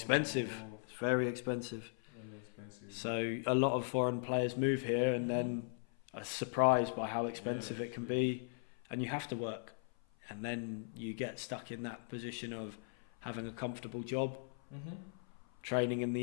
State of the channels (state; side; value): silent; right; 52 dB below the other